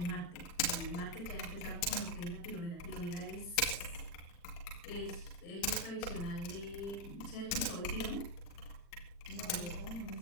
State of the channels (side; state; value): right; late; 40 ms